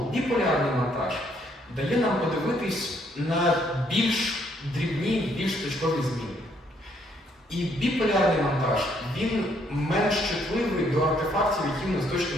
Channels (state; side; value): normal; both; correlation 0.69